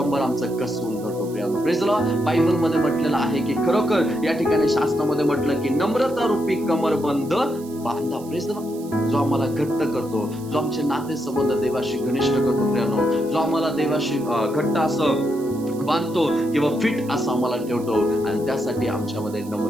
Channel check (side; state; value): right; noise; hiss, 21 dB below the sound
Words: आमचं कसवून धरतो प्रियांनो. प्रेज लॉर्ड बायबलमध्ये म्हटलेलं आहे की खरोखर या ठिकाणी शास्त्रामध्ये म्हटलं की नम्रता रूपी कमरबंद बांधा. प्रेज लॉर्ड जो आम्हाला घट्ट करतो, जो आमचे नाते संबंध देवाशी घनिष्ठ करतो प्रियांनो, जो आम्हाला देवाशी घट्ट असं बांधतो किंवा फिट असं आम्हाला ठेवतो, आणि त्यासाठी आमच्यामध्ये